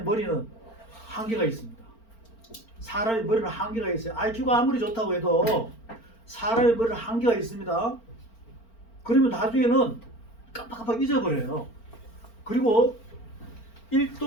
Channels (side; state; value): right; late; 4.4 ms